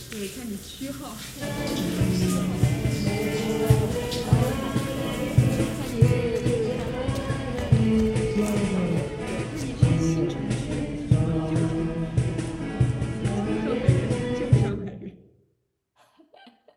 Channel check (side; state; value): both; identical; correlation 1.00